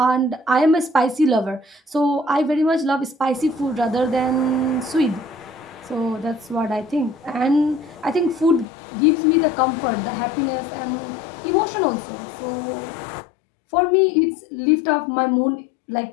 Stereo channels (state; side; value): drops out; right; at 8.7 s